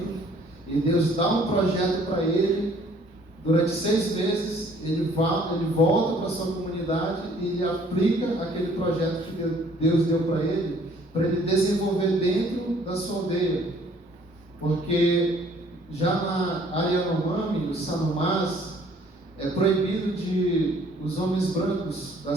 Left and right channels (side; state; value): both; normal; correlation 0.59